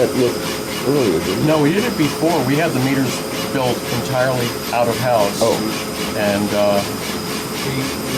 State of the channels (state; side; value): identical; both; correlation 1.00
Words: look earlier? Didn't you? No, we did it before. We had the meters built entirely out of house. Oh. And